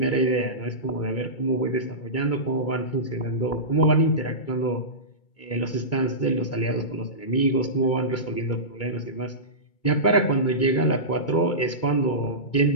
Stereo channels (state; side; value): late; right; 2.2 ms